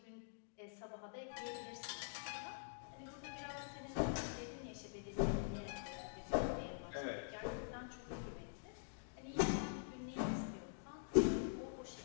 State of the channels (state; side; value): silent; right; digital silence